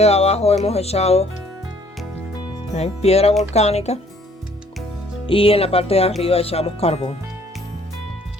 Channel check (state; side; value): normal; both; correlation 0.60